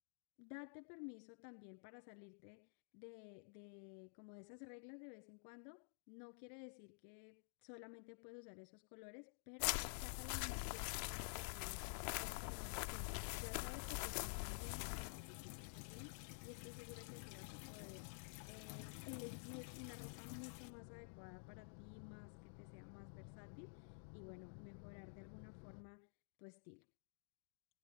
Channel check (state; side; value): silent; right; digital silence